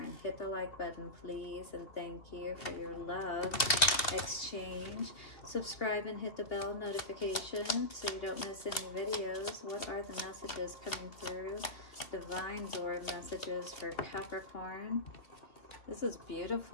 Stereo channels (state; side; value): late; right; 2.9 ms